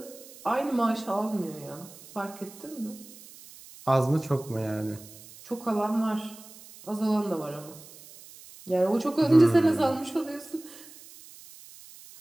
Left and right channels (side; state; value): right; noise; hiss, 19 dB below the sound